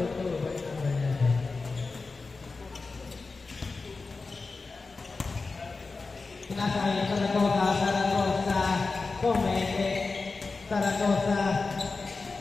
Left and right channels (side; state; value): right; quieter; 4.0 dB